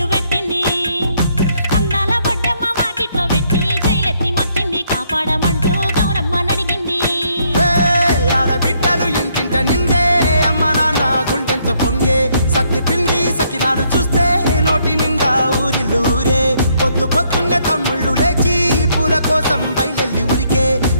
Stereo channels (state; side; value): inverted; both; correlation -0.71